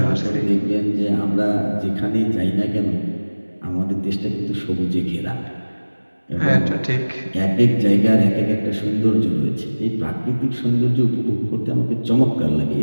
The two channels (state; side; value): inverted; both; correlation -1.00